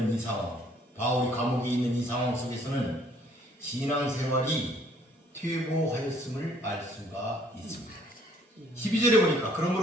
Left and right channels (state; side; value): normal; both; correlation 0.62